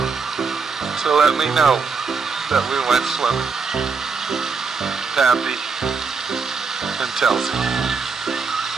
to let me know that we went swimming. Pappy and Telzy.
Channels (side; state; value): left; quieter; 5.0 dB